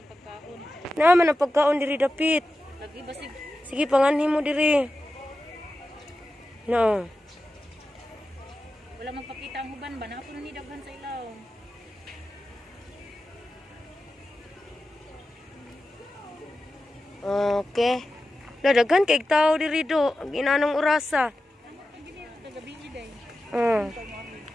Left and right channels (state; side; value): normal; both; correlation 0.92